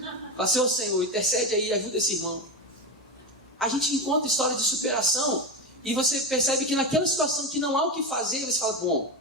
Fala, Senhor, intercede aí, ajuda esse irmão. A gente encontra história de superação, e você percebe que naquela situação que não há o que fazer, você fala, bom,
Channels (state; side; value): normal; both; correlation 0.17